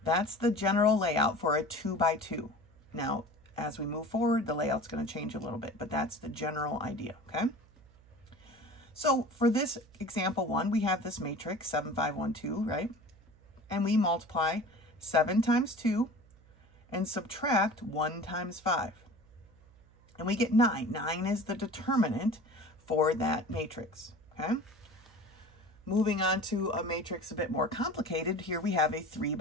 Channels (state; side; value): noise; right; hum, 26 dB below the sound